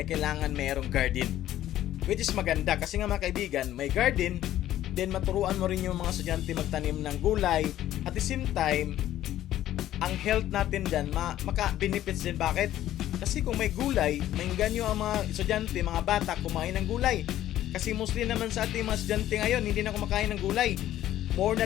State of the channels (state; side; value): quieter; right; 12.9 dB